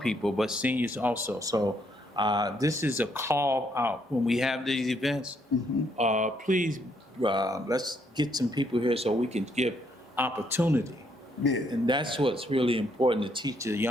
but seniors also. So this is a call out when we have these events. Please, let's get some people here so we can give opportunity. Yeah. And that's what's really important, to teach the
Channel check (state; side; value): normal; both; correlation 0.72